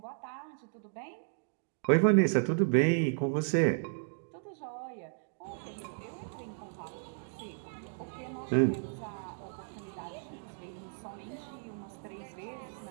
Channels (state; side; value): silent; left; digital silence